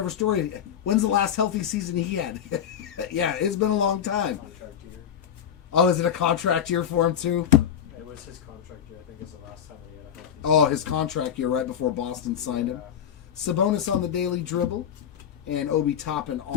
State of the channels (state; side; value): quieter; right; 8.9 dB